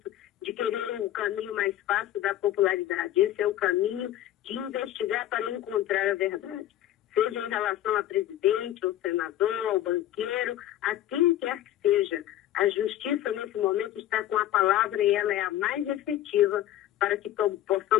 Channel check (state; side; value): quieter; right; 12.9 dB